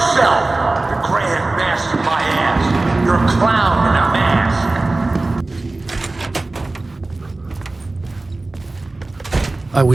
The Grand Master my ass! You're a clown in a mask! I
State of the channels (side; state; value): left; quieter; 3.1 dB